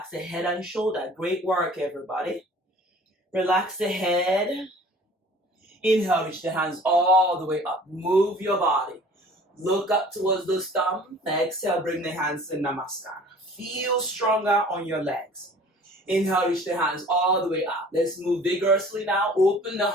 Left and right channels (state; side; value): normal; both; correlation 0.49